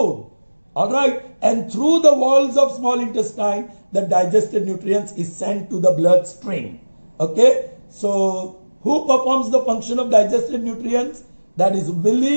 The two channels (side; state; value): both; inverted; correlation -1.00